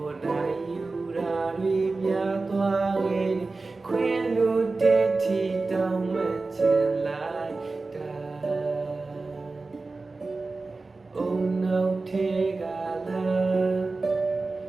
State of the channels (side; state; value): left; quieter; 3.6 dB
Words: ်နိုင်ယူရာတွေများသွားခဲ့ခွင်လို့တဲ့တီတောင်းမှချင်လိုက်တာအုံနောက်ထဲကလား